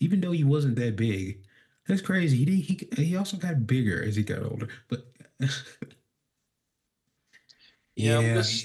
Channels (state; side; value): identical; both; correlation 1.00